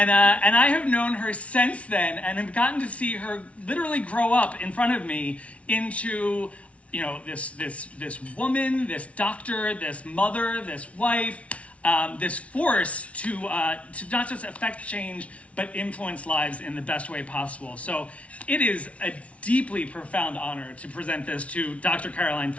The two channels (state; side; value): late; right; 0.064 ms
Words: I have known her since then and have gotten to see her literally grow up in front of me into, this woman, this doctor, this mother, this wife, this force to not just affect change, but influence lives in the best way possible. So it is a deeply profound honor to present this to Dr. Caroline